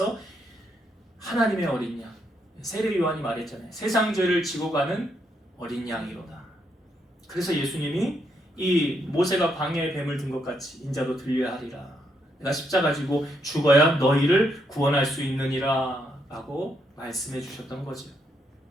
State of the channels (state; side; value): normal; both; correlation 0.77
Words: 하나님의 어린 양, 세례 요한이 말했잖아요. 세상 죄를 지고 가는 어린 양이로다. 그래서 예수님이 이 모세가 광야에 뱀을 든 것 같이 인자도 들려야 하리라. 내가 십자가 지고 죽어야 너희를 구원할 수 있느니라 라고 말씀해 주셨던 거죠.